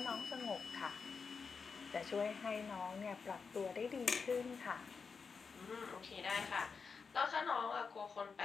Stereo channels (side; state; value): right; quieter; 5.3 dB